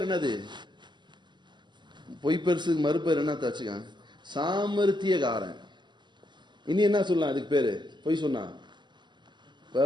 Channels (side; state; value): left; late; 0.22 ms